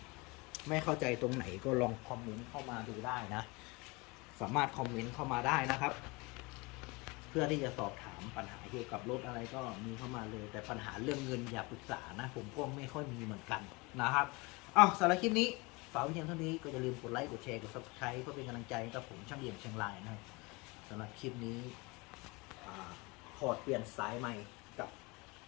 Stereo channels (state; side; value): quieter; right; 25.9 dB